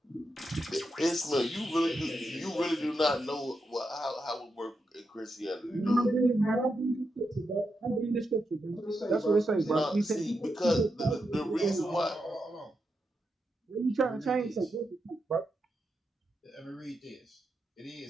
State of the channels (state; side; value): normal; both; correlation 0.85